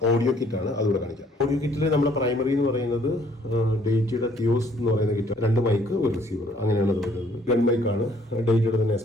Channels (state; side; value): normal; both; correlation 0.62